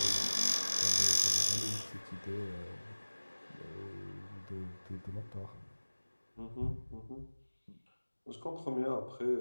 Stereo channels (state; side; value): inverted; both; correlation -1.00